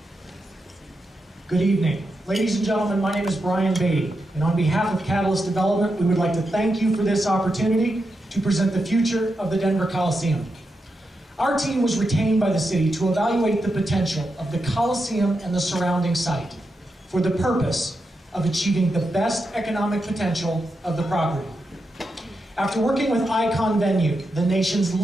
evening. Ladies and gentlemen, my name is Brian Beatty, and on behalf of Catalyst Development, we would like to thank you for this opportunity to present the future of the Denver Coliseum. Our team was retained by the city to evaluate the potential of the Coliseum and the surrounding site for the purpose of achieving the best economic potential of the property. After working with Icon Venue, the nation's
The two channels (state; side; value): normal; both; correlation 0.86